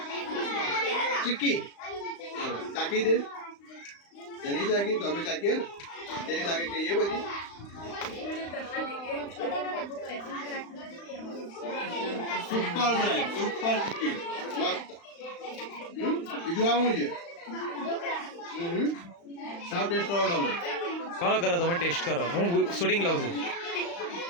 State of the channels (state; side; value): late; right; 35 ms